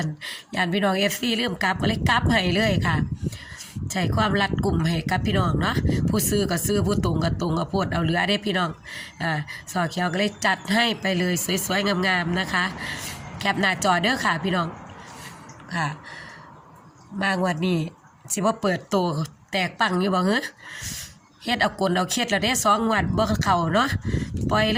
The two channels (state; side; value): identical; both; correlation 1.00